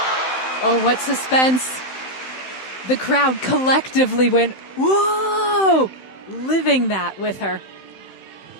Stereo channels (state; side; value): late; right; 16 ms